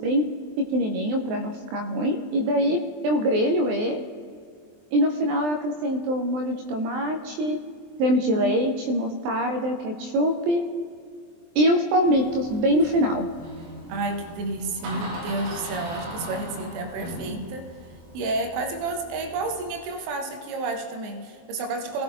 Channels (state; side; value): late; left; 23 ms